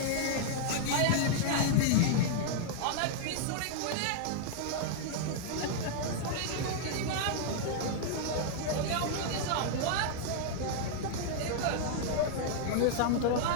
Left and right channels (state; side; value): different; both; correlation -0.01